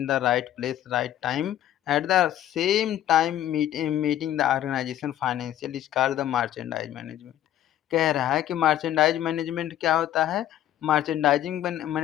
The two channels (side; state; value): right; quieter; 12.1 dB